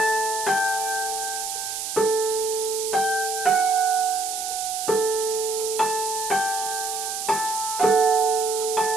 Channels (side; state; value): right; noise; hiss, 4 dB below the sound